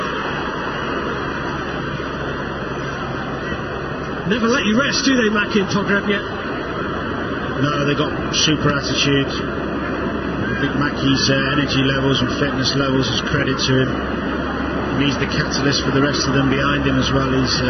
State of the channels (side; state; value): both; identical; correlation 1.00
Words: Never let you rest, do they, Maki and Pogrebniak? No, they got super attitude. I think Mackey's energy levels and fitness levels is credit to him. And he's the catalyst for the rest of them behind him as well.